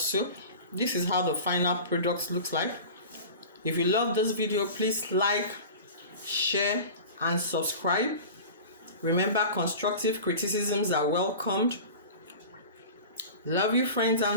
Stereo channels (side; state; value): both; inverted; correlation -0.35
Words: This is how the final product looks like. If you love this video, please like, share, and subscribe. Remember, constructive criticisms are welcomed. Love you, friends